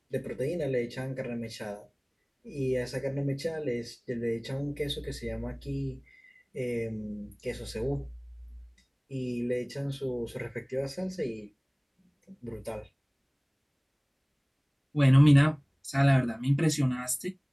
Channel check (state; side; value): identical; both; correlation 1.00